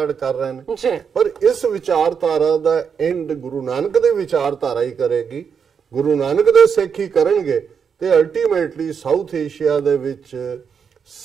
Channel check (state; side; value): quieter; left; 6.7 dB